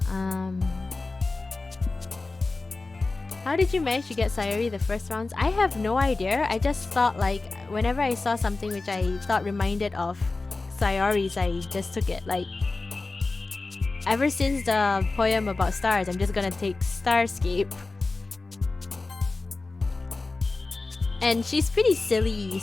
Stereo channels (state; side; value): quieter; right; 3.5 dB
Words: How did you manage to get Sayori the first rounds? I have no idea. I just thought like whenever I saw something which I thought reminded of Sayori's, I just took it. Like ever since the poem about stars, I'm just gonna take Starscape. And she's pretty silly,